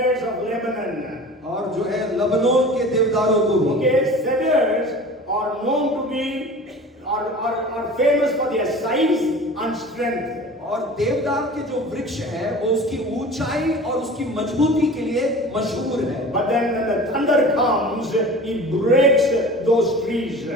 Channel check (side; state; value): both; normal; correlation 0.40